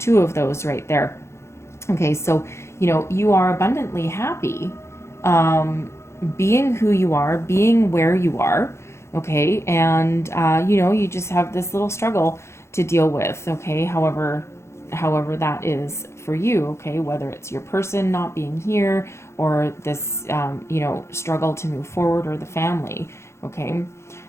right there. Okay, so you are abundantly happy, being who you are, being where you are. Okay, and you just have this little struggle to deal with, okay, however that is for you, okay, whether it's your person not being here or this struggle to move forward, or the family, okay.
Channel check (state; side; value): late; right; 0.13 ms